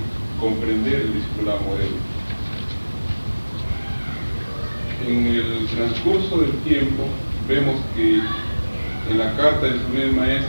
comprender el discipulado modelo. En el transcurso del tiempo vemos que en la carta de su primer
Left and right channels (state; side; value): inverted; both; correlation -1.00